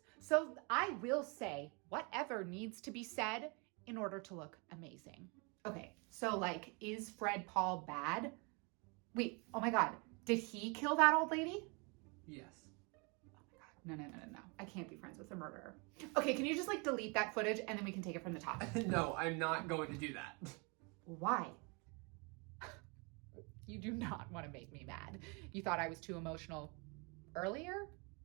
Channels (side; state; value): left; quieter; 31.7 dB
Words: So I will say whatever needs to be said in order to look amazing. Okay, so like, is Fred Paul bad? Wait, oh my God, did he kill that old lady? Yes. Oh my God, no. I can't be friends with a murderer. Okay, can you just like delete that footage and then we can take it from the top? No, I'm not going to do that. Why? You do not want to make me mad. You thought I was too emotional earlier?